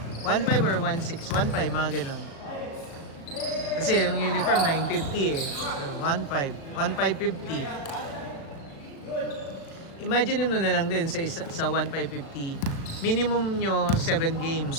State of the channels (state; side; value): late; right; 37 ms